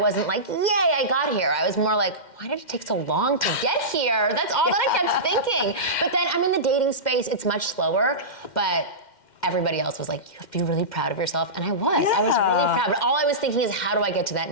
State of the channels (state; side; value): late; right; 2.1 ms